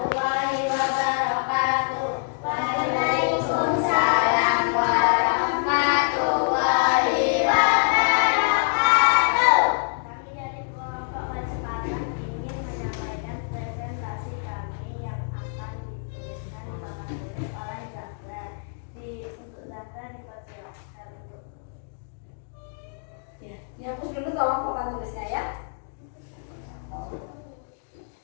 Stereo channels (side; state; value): right; silent; digital silence